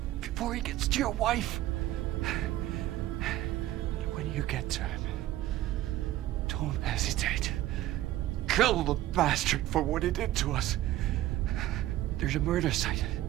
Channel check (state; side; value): quieter; left; 14.6 dB